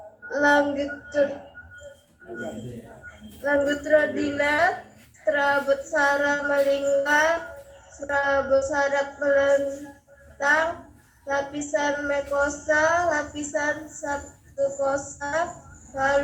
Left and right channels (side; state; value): both; identical; correlation 1.00